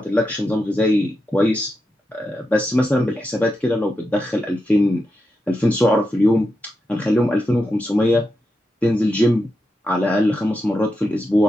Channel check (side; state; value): both; normal; correlation 0.87